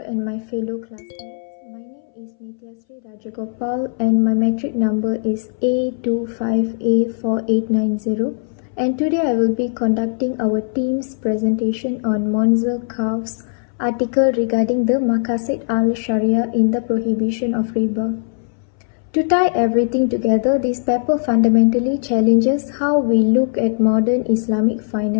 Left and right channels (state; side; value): silent; right; 63 dB below the other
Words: and my fellow classmates. My name is Nityasri Rajagopal and my metric number is A25A4890, and today I will be conducting our team's presentation on Monzer Kaf's article regarding the Maqasid al-Sharia in the prohibition of riba. To tie everything together, this paper fundamentally challenges how we look at modern Islamic